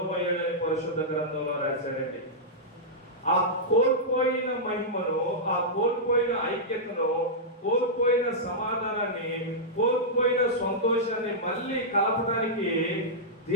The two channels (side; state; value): both; normal; correlation -0.11